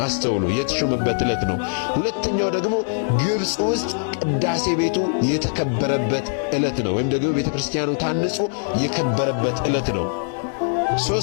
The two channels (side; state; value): right; silent; digital silence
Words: አስተውሉ፣ የተሾመበት ዕለት ነው። ሁለተኛው ደግሞ ግብጽ ውስጥ ቅዳሴ ቤቱ የተከበረበት ዕለት ነው፣ ወይም ደግሞ ቤተክርስቲያኑ ታንጾ የከበረበት ዕለት ነው።